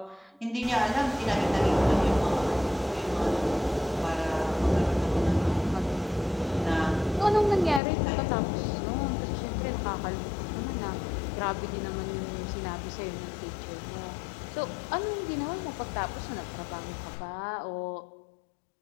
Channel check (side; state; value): right; drops out; at 7.8 s